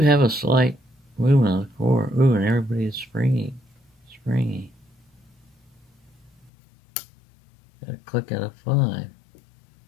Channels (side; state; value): right; drops out; at 6.5 s